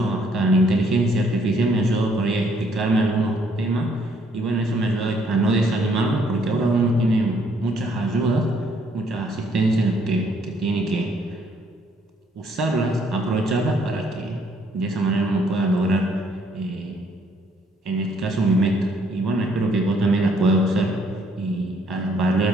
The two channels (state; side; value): normal; both; correlation 0.66